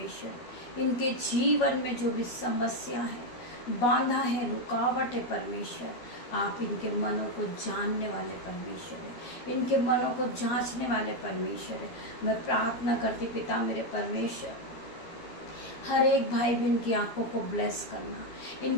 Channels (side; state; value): right; late; 12 ms